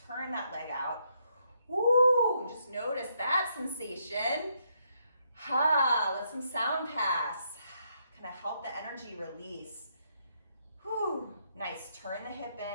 that leg out. Woo! And just notice that sensation. Let some sound pass. Kind of help the energy release. Whew. Nice. Turn the hip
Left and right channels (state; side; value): inverted; both; correlation -0.75